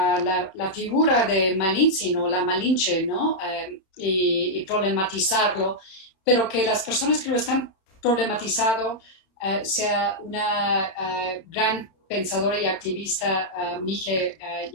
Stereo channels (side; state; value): right; late; 31 ms